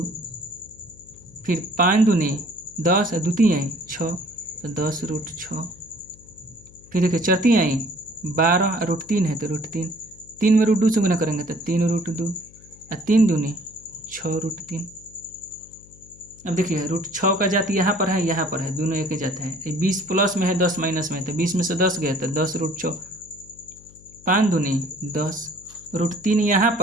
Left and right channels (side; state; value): left; noise; hum, 24 dB below the sound